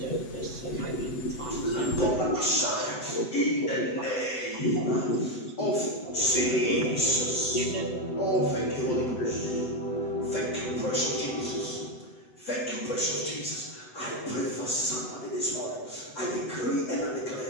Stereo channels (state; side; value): late; right; 8.0 ms